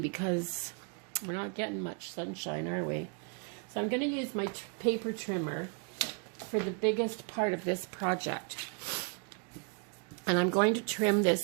because we're not getting much sunshine, are we? So I'm going to use my paper trimmer for the biggest part of this project. And I'm going to trim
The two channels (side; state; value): left; quieter; 36.9 dB